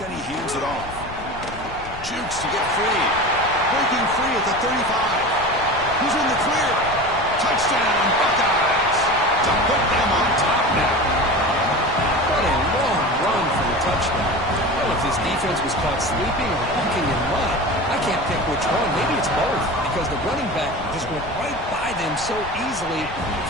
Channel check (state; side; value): noise; left; rumble, 14 dB below the sound